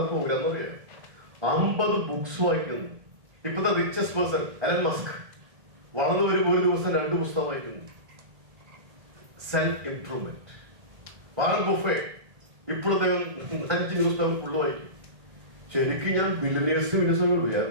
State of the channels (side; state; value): left; late; 1.8 ms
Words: പ്രോഗ്രാം എന്നറിയാം. 50 ബുക്സ് വായിക്കുന്നു. ഇപ്പോഴത്തെ റിച്ചസ്റ്റ് പേഴ്സൺ എലൻ മസ്ക് വളർന്നു വരുമ്പോൾ ഒരു ദിവസം 2 പുസ്തകം വായിക്കുന്നു. Self improvement. വാറൻ ബുഫേ ഇപ്പോഴത്തെ 5 ന്യൂസ് പേപ്പർ ഫുള്ള് വായിക്കും. ശരിക്കും ഞാൻ ബില്യനേഴ്സും